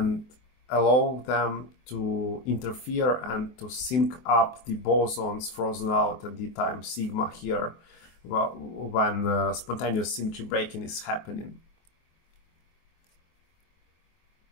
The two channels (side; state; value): right; late; 24 ms